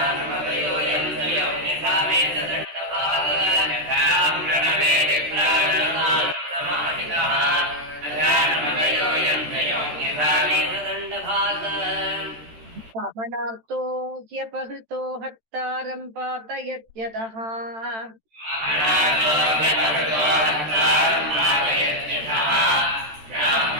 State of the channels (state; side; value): late; left; 13 ms